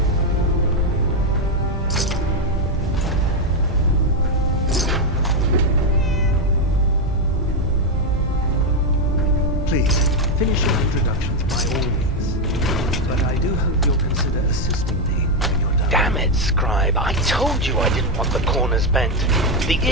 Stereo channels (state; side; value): normal; both; correlation 0.05